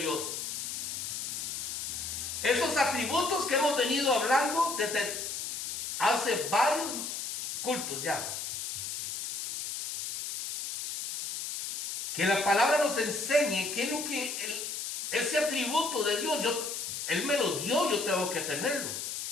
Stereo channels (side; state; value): left; noise; hiss, 4 dB below the sound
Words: Esos atributos que hemos venido hablando desde hace varios cultos ya. Que la palabra nos enseñe qué es lo que ese atributo de Dios, Él me lo dio, yo tengo que tenerlo.